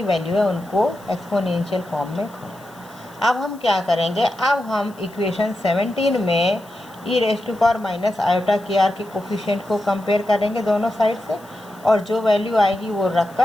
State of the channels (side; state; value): left; noise; hiss, 26 dB below the sound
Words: वैल्यू है उनको एक्सपोनेंशियल फॉर्म में खोला। अब हम क्या करेंगे, अब हम इक्वेशन 17 में E raise to power minus iota के आर के कोफिशिएंट को कंपेयर करेंगे दोनों साइड से और जो वैल्यू आएगी वो